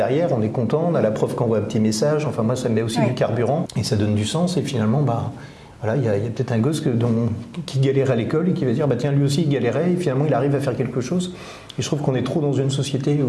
on est content, on a la prof qui envoie un petit message, enfin moi ça me met aussi du carburant, et ça donne du sens, et finalement, voilà, il y a peut-être un gosse qui galère à l'école et qui va dire tiens, lui aussi il galérait et finalement il arrive à faire quelque chose. Et je trouve qu'on est trop dans une société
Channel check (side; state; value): both; identical; correlation 1.00